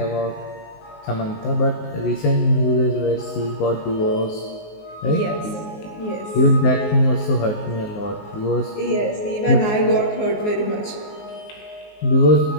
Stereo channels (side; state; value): right; late; 19 ms